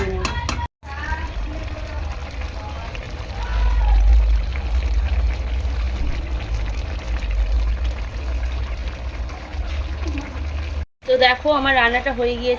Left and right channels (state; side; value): identical; both; correlation 1.00